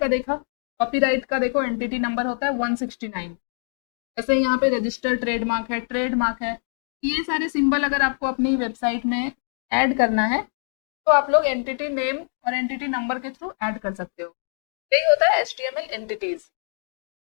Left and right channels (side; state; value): right; silent; 62 dB below the other